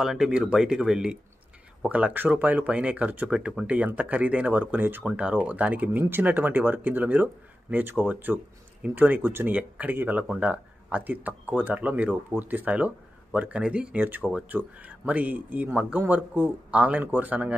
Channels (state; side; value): normal; both; correlation 0.92